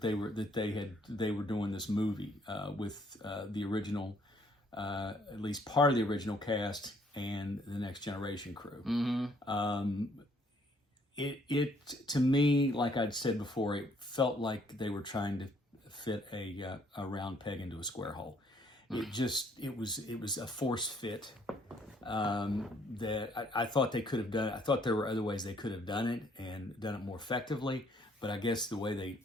they were doing this movie with the original, at least part of the original cast and the Next Generation crew. Mm-hmm. It to me, like I'd said before, it felt like they were trying to fit a round peg into a square hole. It was a force fit that I thought they could have done. I thought there were other ways they could have done it and done it more effectively. But I guess the way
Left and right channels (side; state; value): both; normal; correlation 0.65